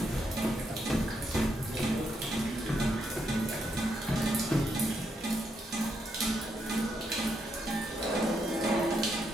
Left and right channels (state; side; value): normal; both; correlation 0.79